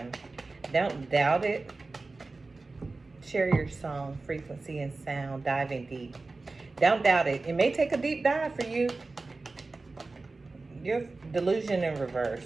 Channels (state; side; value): quieter; left; 3.5 dB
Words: Don't doubt it. Share your song, frequency and sound, diving deep. Don't doubt it. It may take a deep dive for you. Your delusion in